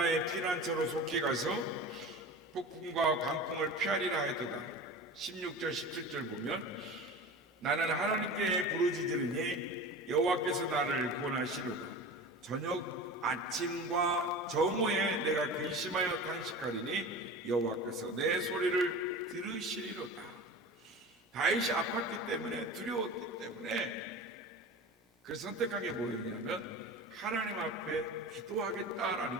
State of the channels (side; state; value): both; normal; correlation 0.33